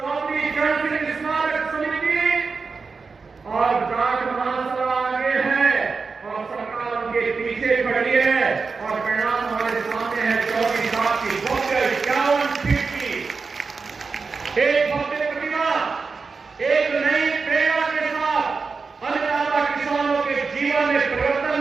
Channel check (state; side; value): quieter; left; 4.7 dB